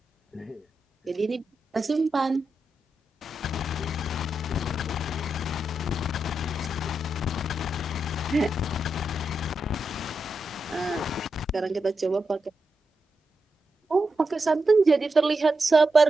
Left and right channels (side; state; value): both; normal; correlation 0.86